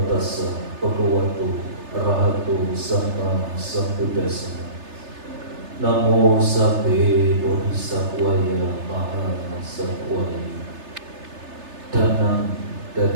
Tassa Bhagavato Arahato Sama Sambuddhassa. Namo Sabbe Bodhisattvaya Mahasattvaya. Danang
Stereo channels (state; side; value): late; left; 3.3 ms